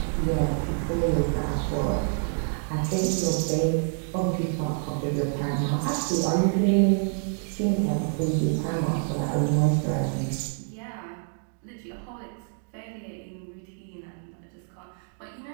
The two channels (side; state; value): left; silent; 60 dB below the other